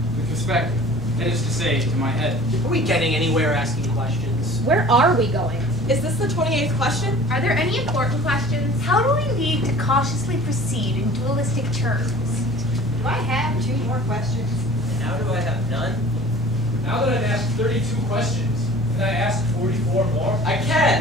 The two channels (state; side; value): normal; both; correlation 0.45